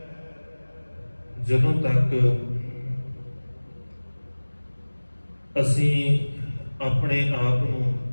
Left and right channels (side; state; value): both; inverted; correlation -1.00